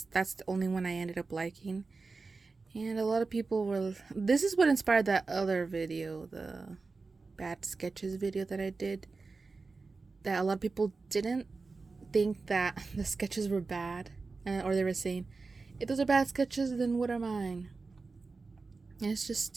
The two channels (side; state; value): left; quieter; 4.1 dB